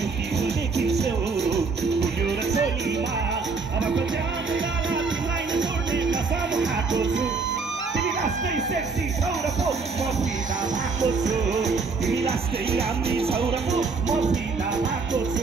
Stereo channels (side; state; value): left; quieter; 4.5 dB